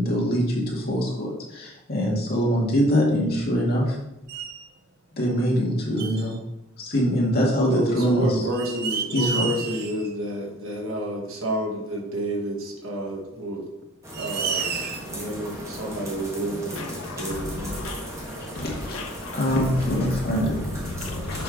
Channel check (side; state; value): both; normal; correlation 0.54